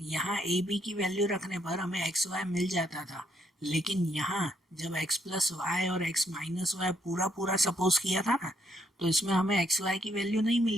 यहाँ ए बी की वैल्यू रखने पर हमें एक्स वाई मिल जाता था, लेकिन यहाँ जब x प्लस वाई और x माइनस वाई पूरा पूरा सपोज किया था ना तो इसमें हमें एक्स वाई की वैल्यू नहीं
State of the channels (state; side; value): normal; both; correlation 0.73